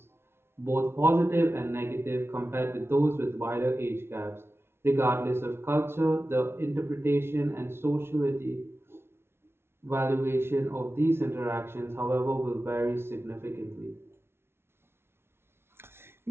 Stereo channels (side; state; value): left; late; 0.12 ms